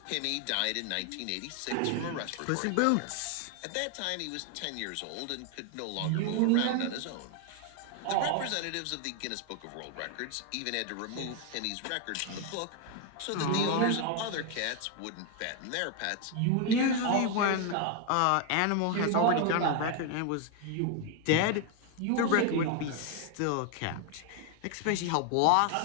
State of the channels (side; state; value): both; different; correlation 0.01